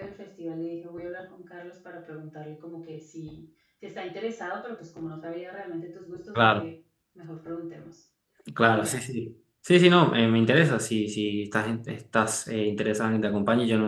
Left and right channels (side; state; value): both; identical; correlation 1.00